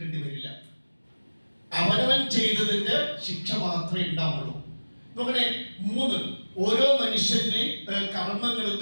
വരില്ല. അവനവൻ ചെയ്തതിന്റെ ശിക്ഷ മാത്രമേ ഉണ്ടാവുള്ളൂ. നോക്കണേ, 3, ഓരോ മനുഷ്യന്റെ കർമ്മങ്ങൾ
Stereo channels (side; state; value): both; inverted; correlation -1.00